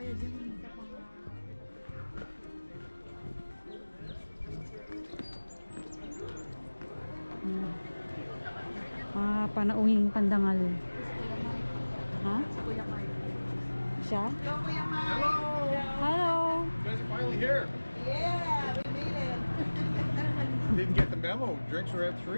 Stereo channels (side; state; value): both; inverted; correlation -1.00